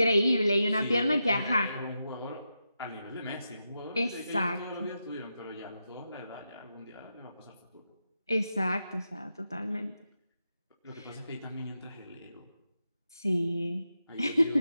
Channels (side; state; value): both; inverted; correlation -0.87